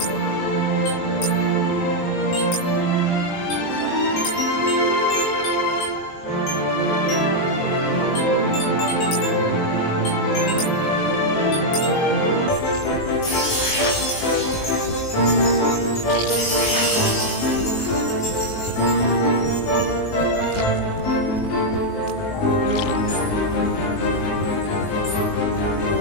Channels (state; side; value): late; right; 19 ms